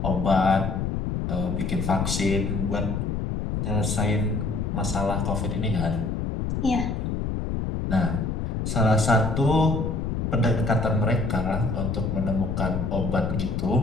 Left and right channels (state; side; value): noise; left; rumble, 1 dB below the sound